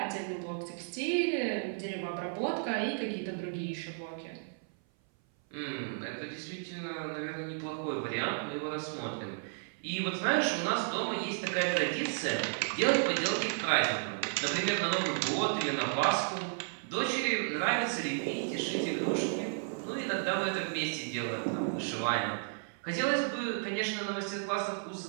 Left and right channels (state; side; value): silent; left; 56 dB below the other